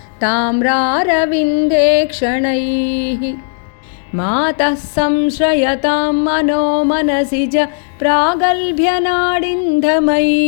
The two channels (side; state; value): right; silent; digital silence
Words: ताम्रारविन्देक्षणैः मातः संश्रयतां मनो मनसि च